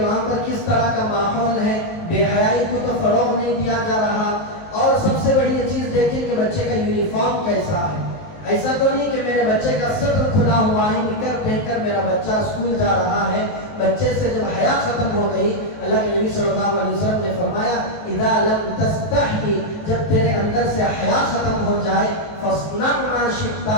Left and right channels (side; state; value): right; late; 19 ms